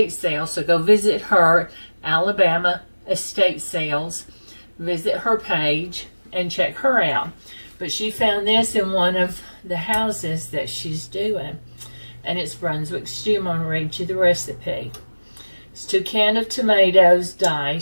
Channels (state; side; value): inverted; both; correlation -1.00